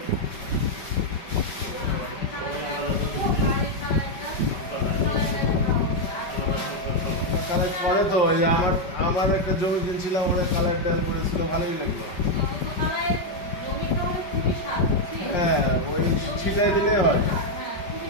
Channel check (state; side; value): late; right; 5.2 ms